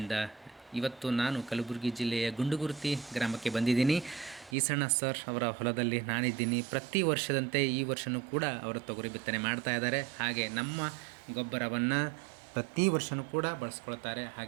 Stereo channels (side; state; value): left; drops out; at 4.5 s